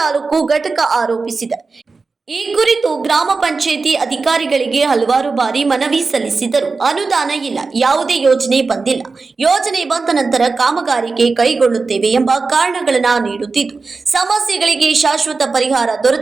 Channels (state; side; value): quieter; left; 4.2 dB